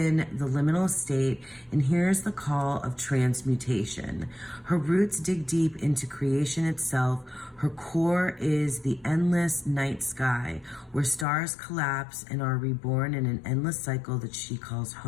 the liminal state and hears the call of transmutation. Her roots dig deep into creation itself. Her core is the endless night sky, where stars collapse and are reborn in an endless cycle that she calls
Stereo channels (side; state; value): right; drops out; at 11.2 s